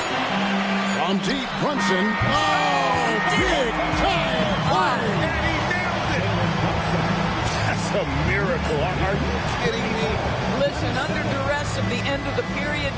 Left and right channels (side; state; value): both; identical; correlation 1.00